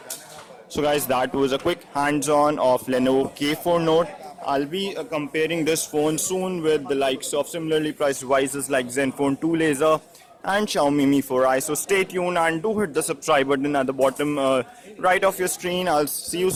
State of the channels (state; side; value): identical; both; correlation 1.00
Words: So guys, that was a quick hands-on of Lenovo K4 Note. I'll be comparing this phone soon with the likes of similarly priced devices like Zenfone 2 Laser and Xiaomi Mi 4i. So stay tuned and do hit the subscribe button at the bottom right of your screen. I'll see you